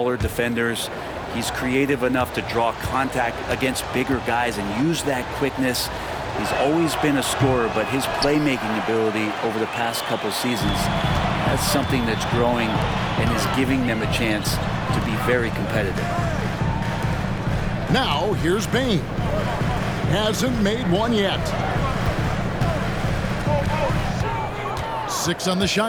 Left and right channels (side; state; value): both; identical; correlation 1.00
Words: defenders. He's creative enough to draw contact against bigger guys and use that quickness. He's always been a scorer, but his playmaking ability over the past couple seasons, that's something that's growing and is giving them a chance to be very competitive. Now, here's Bane. Hasn't made one yet. 6 on the